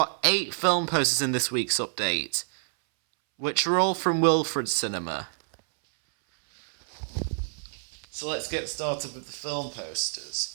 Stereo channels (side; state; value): left; silent; 60 dB below the other